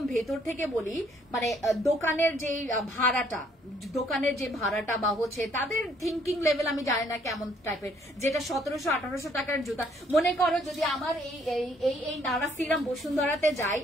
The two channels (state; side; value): normal; both; correlation 0.65